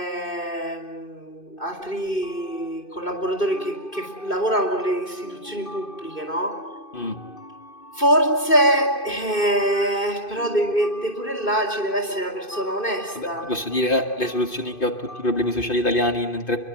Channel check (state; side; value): late; right; 2.5 ms